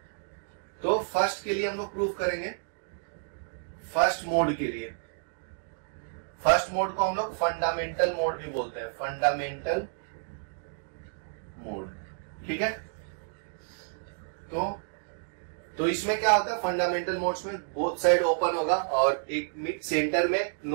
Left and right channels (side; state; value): left; silent; digital silence